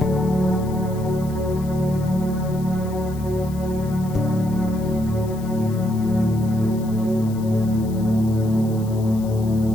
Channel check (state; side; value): noise; left; hiss, 21 dB below the sound